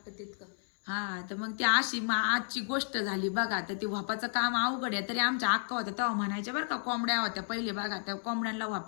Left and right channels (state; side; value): silent; right; 56 dB below the other